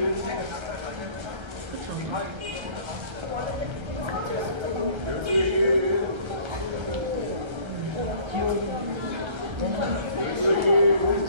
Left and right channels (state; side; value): late; left; 1.3 ms